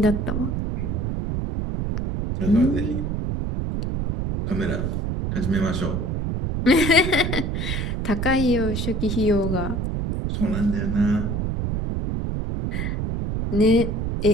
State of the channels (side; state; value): right; noise; rumble, 1 dB below the sound